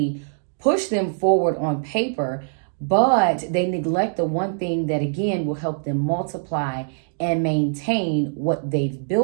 push them forward on paper, but they neglect the one thing that, again, will help them multiply and maintain what they've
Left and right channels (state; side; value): silent; left; digital silence